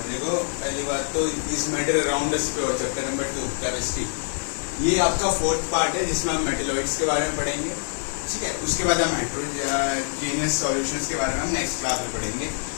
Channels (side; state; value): right; silent; 56 dB below the other